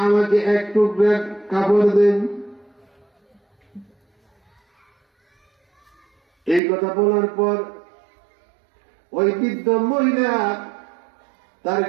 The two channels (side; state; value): left; drops out; at 6.6 s